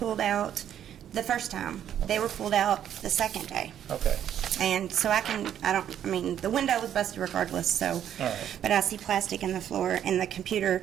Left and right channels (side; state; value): left; quieter; 10.1 dB